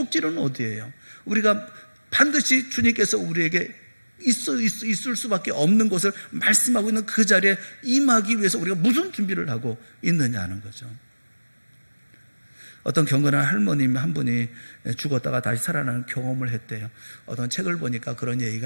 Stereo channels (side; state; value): both; inverted; correlation -1.00